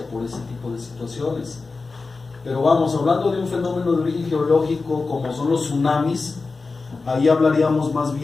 por ese tipo de situaciones. Pero vamos, hablando de un fenómeno de origen geológico como son los tsunamis, ahí hablaríamos más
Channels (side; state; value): right; quieter; 4.0 dB